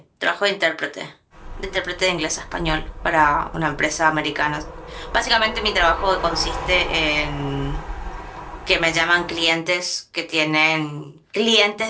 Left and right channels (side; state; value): both; identical; correlation 1.00